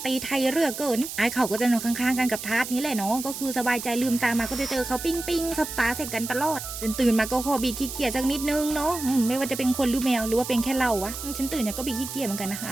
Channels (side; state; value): right; noise; hiss, 8 dB below the sound